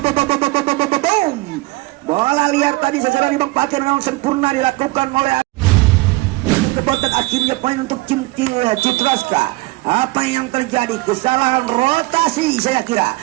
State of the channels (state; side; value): quieter; left; 21.9 dB